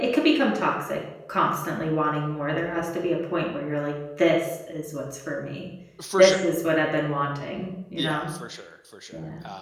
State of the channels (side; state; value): both; identical; correlation 1.00